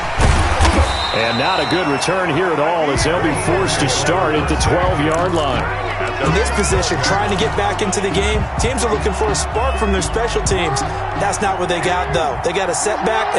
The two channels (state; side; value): identical; both; correlation 1.00